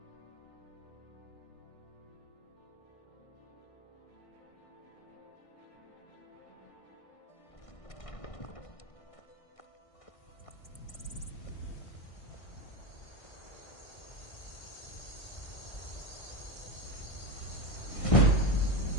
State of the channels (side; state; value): right; late; 1.6 ms